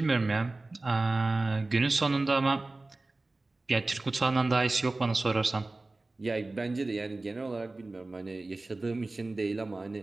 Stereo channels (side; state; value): left; quieter; 3.1 dB